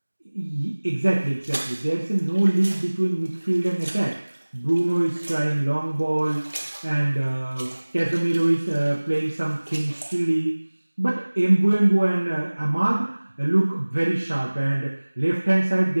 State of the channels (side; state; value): both; inverted; correlation -1.00